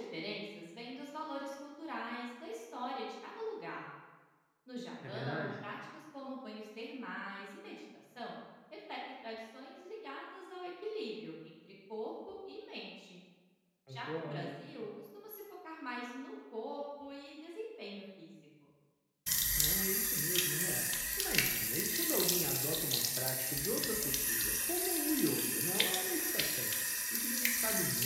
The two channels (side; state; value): both; identical; correlation 1.00